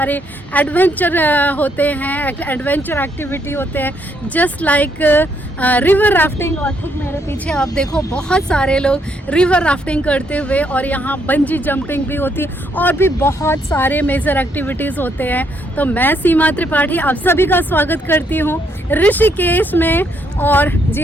एडवेंचर होते हैं, एडवेंचर एक्टिविटी होते हैं, जस्ट लाइक रिवर राफ्टिंग। और ठीक मेरे पीछे आप देखो बहुत सारे लोग रिवर राफ्टिंग करते हुए, और यहाँ बंजी जंपिंग भी होती है और भी बहुत सारे मेजर एक्टिविटीज़ होते हैं। तो मैं सीमा त्रिपाठी आप सभी का स्वागत करती हूँ ऋषिकेश में। और जी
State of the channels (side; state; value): both; normal; correlation 0.73